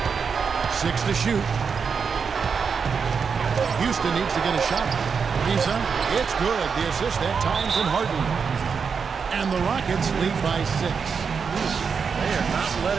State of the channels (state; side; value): quieter; left; 5.9 dB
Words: 6 to shoot. Houston needs to get a shot. Lisa, it's good. The assist that time from Harden. And the Rockets lead by 6. They are not